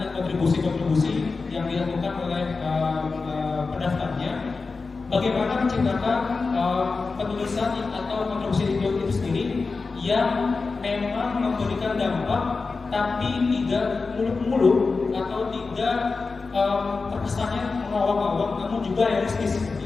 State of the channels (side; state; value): right; quieter; 4.2 dB